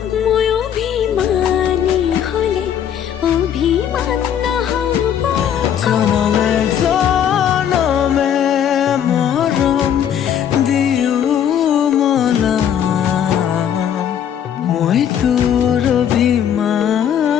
মই অভিমানী হ'লে অভিমান নহ'ব জনমে জনমে মৰম দিও মলাম মই তোৰ অভিমান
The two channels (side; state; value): right; quieter; 9.2 dB